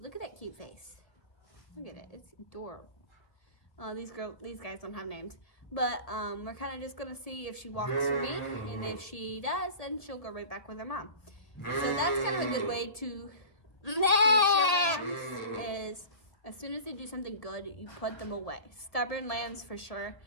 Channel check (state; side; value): late; right; 1.5 ms